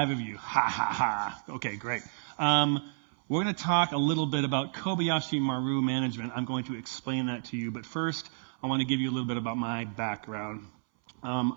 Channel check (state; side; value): silent; left; 57 dB below the other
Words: of you. Ha, ha, ha. Okay, great. We're going to talk a little bit about Kobayashi Maru management. I'm going to explain that to you, but first, I want to give you a little bit about my background.